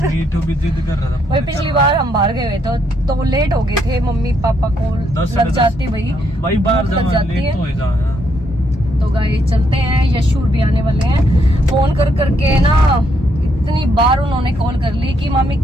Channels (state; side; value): normal; both; correlation 0.75